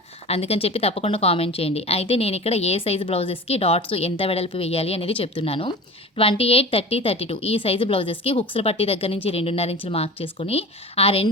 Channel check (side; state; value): both; normal; correlation 0.35